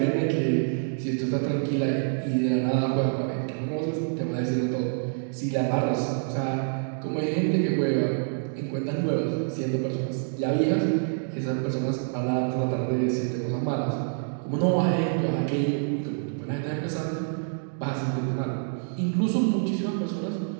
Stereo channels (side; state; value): left; silent; digital silence